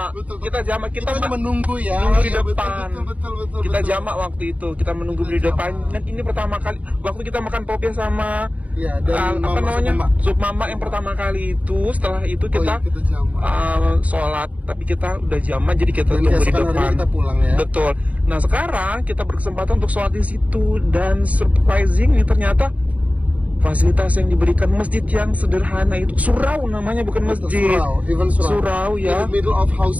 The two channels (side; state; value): left; late; 0.069 ms